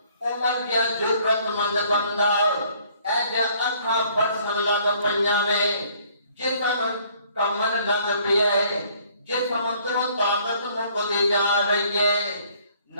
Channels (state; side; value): inverted; both; correlation -0.61